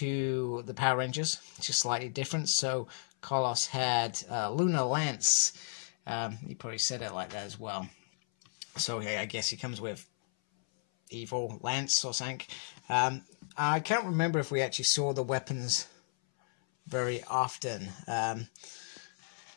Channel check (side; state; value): right; silent; 55 dB below the other